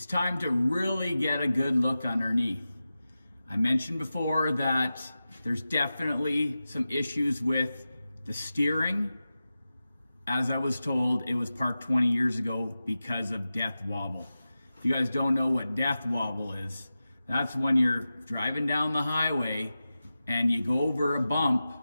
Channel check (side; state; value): both; inverted; correlation -0.94